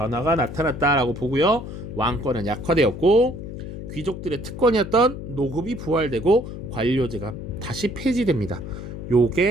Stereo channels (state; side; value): noise; left; hum, 9 dB below the sound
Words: 나타났다라고 보고요, 왕권은 약화되었고 귀족들의 특권이었던 노급이 부활되고 관료제가 다시 폐지됩니다.